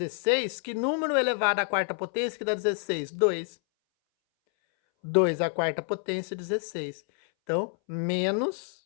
que número elevado à quarta potência que dá 16? 2. 2 à quarta potência, 16. Então,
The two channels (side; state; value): right; silent; 59 dB below the other